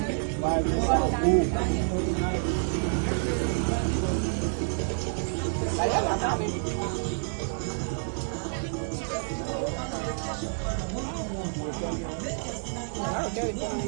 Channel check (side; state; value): left; silent; digital silence